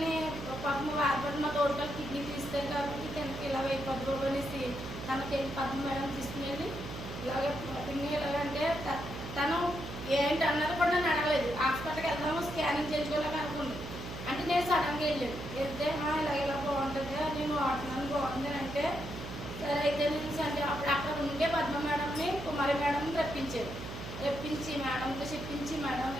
పాపం వాడబడి మా తోడుకలు కిడ్నీ తీస్తారు కాబట్టి తనకి ఇలా అయిపోద్దు అనేసి తనకి పద్మ మేడం తీసుకునేది. ఇలాగే పిన్ని ఎలాగంటే తను ఏంటి అన్నది కూడా నన్ను అడగలేదు. హాస్పిటల్కి వెళ్దాము స్కానింగ్ చేయించుకోలేక అనుకుంది. అంటే నేను సడన్గా వెళ్ళాను. వెళ్తే ఇలా బాగుంటుంది, నేను వాడుతున్నాను బాగుంది అని అంటే సరే అయితే నేను అంటే అప్పుడు అక్కడ ఉండే పద్మ మేడంని కుమారి మేడంని రప్పించాను. రప్పించి మేడంతో చెప్పించి మేడం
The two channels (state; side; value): noise; right; hum, 9 dB below the sound